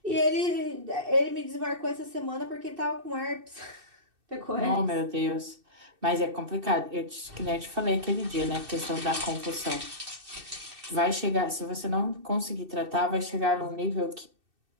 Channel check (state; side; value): late; left; 2.6 ms